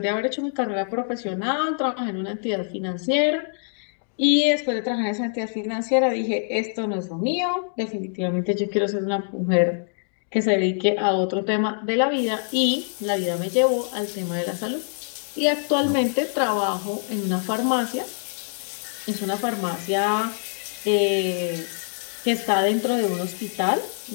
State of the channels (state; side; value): silent; right; digital silence